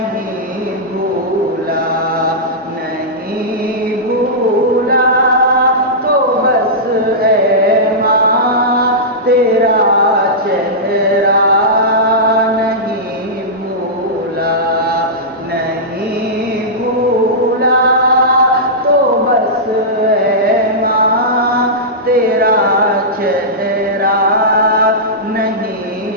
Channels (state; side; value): normal; both; correlation -0.13